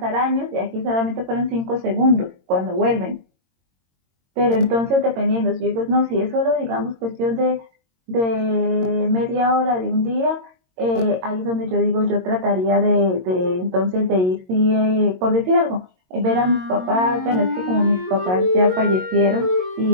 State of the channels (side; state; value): left; late; 22 ms